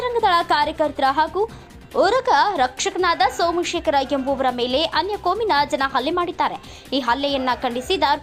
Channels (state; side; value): identical; both; correlation 1.00